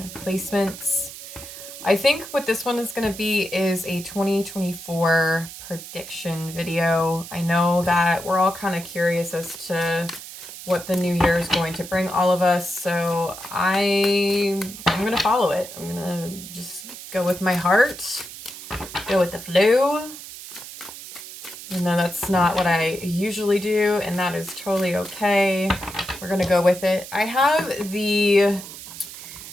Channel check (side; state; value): right; noise; hiss, 13 dB below the sound